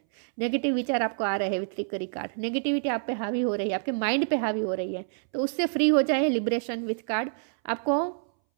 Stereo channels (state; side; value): silent; left; 60 dB below the other